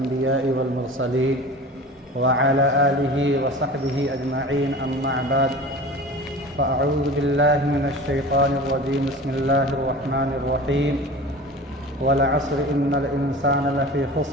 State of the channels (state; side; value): normal; both; correlation 0.37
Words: والمرسلين وعلى آله وصحبه أجمعين أما بعد فأعوذ بالله من الشيطان الرجيم بسم الله الرحمن الرحيم والعصر إن الإنسان لفي